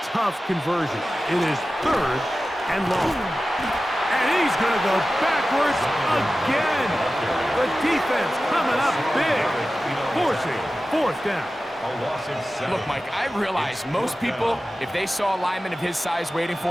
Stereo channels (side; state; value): both; normal; correlation 0.95